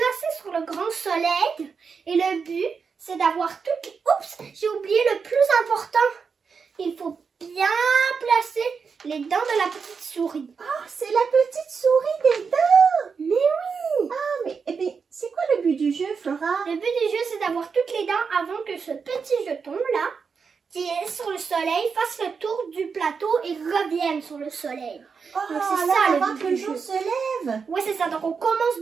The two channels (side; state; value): left; quieter; 5.6 dB